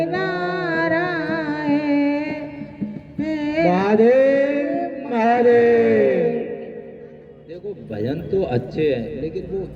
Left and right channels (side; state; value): both; identical; correlation 1.00